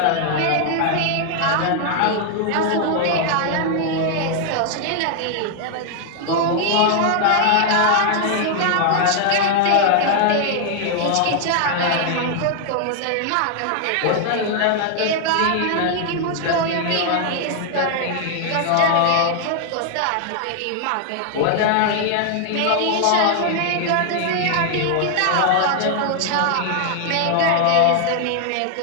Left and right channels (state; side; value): different; both; correlation 0.00